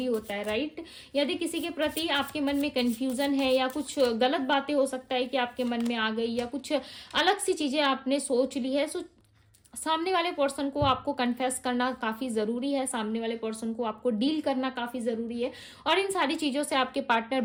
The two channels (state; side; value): identical; both; correlation 1.00